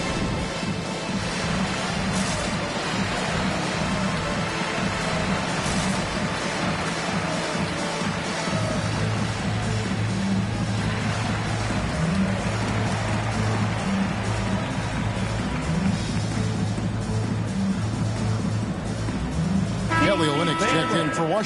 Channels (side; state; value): both; identical; correlation 1.00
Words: Kelly Olynyk checked in for